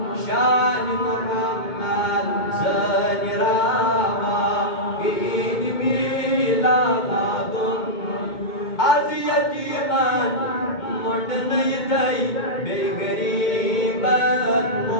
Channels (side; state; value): right; late; 2.2 ms